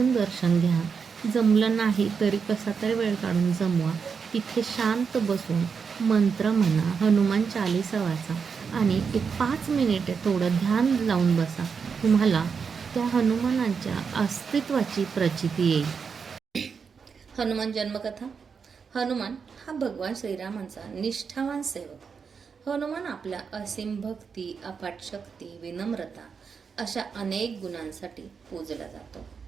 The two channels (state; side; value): quieter; left; 5.9 dB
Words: दर्शन घ्या. जमलं नाही तरी कसा तरी वेळ काढून जमवा. तिथे शांत बसून मंत्र म्हणा, हनुमान चालीसा वाचा आणि एक 5 मिनिटे थोडं ध्यान लावून बसा. तुम्हाला त्या हनुमानाच्या अस्तित्वाची प्रचिती येईल. हनुमान जन्मकथा. हनुमान हा भगवान श्रीरामांचा निष्ठावान सेवक. हनुमान आपल्या असीम भक्ती, अफाट शक्ती, विनम्रता अशा अनेक गुणांसाठी पूजला जातो.